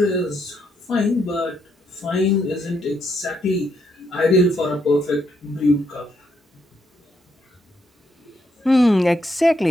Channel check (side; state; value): both; normal; correlation 0.76